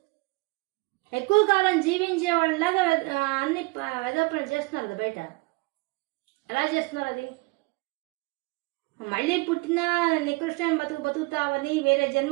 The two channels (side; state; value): left; quieter; 26.2 dB